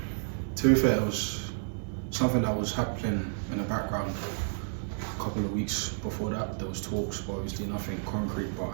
to be fair, it was something that was happening in the background a couple of weeks before that. There was talks, but obviously nothing concrete. But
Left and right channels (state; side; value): silent; left; 57 dB below the other